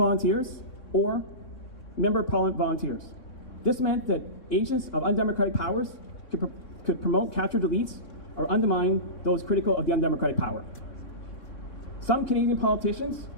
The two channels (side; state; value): right; late; 3.6 ms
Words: or member of parliament volunteers. This meant that agents of undemocratic powers could promote captured elites or undermine those critical of the undemocratic power. Some Canadian politicians